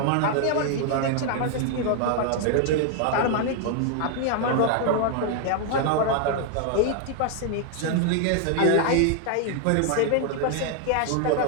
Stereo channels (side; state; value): both; different; correlation 0.00